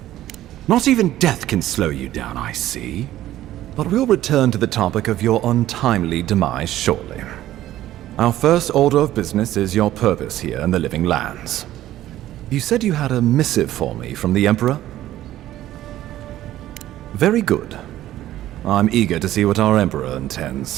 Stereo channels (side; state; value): left; quieter; 13.8 dB